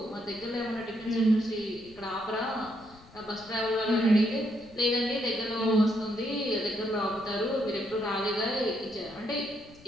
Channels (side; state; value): left; noise; rumble, 23 dB below the sound